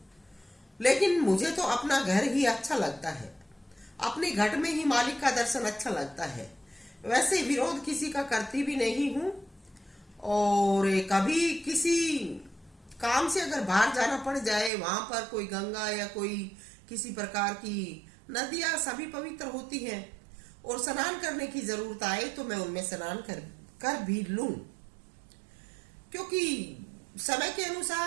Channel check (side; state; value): left; drops out; at 14.7 s